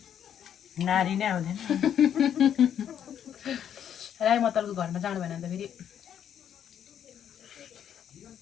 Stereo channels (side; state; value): right; quieter; 9.3 dB